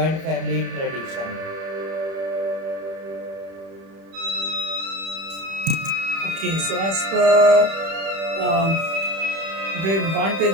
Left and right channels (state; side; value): late; left; 31 ms